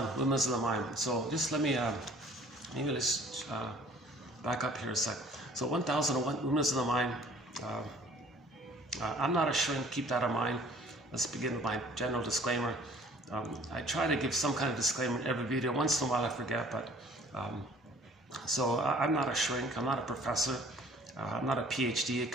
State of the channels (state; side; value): normal; both; correlation 0.53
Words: Windmills of the Mind. So just let me, maybe let's back up here a sec. So 1001, Windmills of the Mind. I'm not a shrink, keep that in mind. Let's begin with my general disclaimer. I try to give some kind of disclaimer in every video. Once in a while I forget, but so I'm not a shrink, I'm not a professor, I'm not a PhD, a